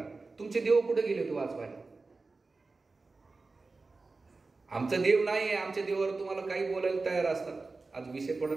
तुमचे देव कुठे गेले होते वाचवायला? आमचा देव नाही आहे, आमच्या देवावर तुम्हाला काही बोलायला तयार असतात. आज विषय थोडा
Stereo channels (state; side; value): quieter; left; 3.8 dB